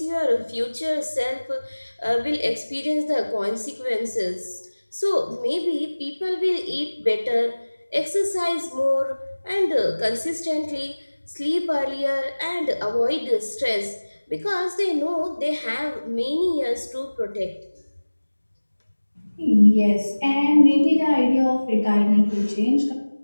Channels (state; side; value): inverted; both; correlation -1.00